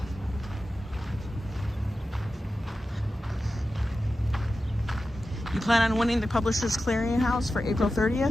You plan on winning the Publishers Clearinghouse for April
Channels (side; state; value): both; normal; correlation 0.93